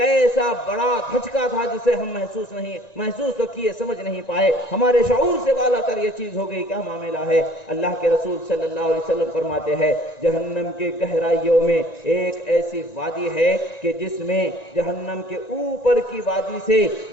بڑا دھچکا تھا جسے ہم محسوس تو کیے، سمجھ نہیں پائے، ہمارے شعور سے بالا تر یہ چیز ہو گئی، کیا معاملہ ہے؟ اللہ کے رسول صلی اللہ علیہ وسلم فرماتے ہیں جہنم کے گہرائیوں میں ایک ایسی وادی ہے کہ جس میں جہنم کے اوپر کی وادی سے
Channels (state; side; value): late; right; 1.9 ms